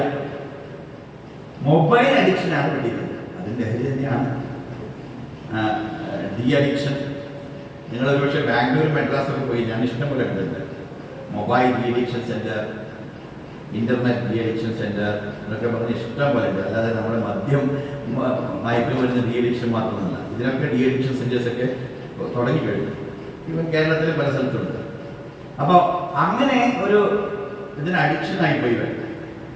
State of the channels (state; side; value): identical; both; correlation 1.00